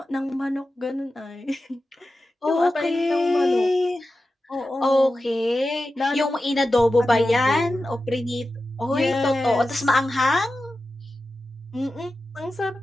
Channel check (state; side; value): normal; both; correlation 0.93